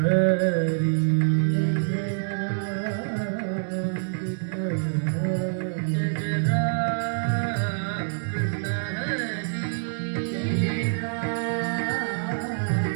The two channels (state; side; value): silent; left; digital silence